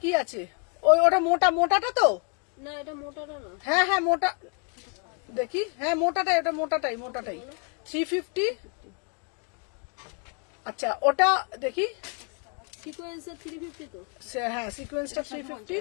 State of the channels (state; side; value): quieter; right; 37.5 dB